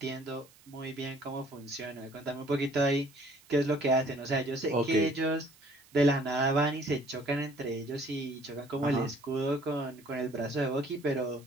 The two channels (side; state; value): right; noise; hiss, 26 dB below the sound